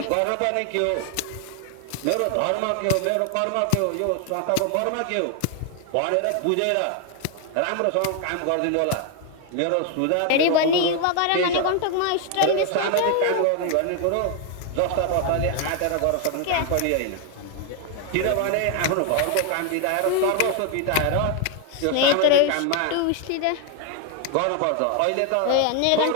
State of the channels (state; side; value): different; both; correlation 0.01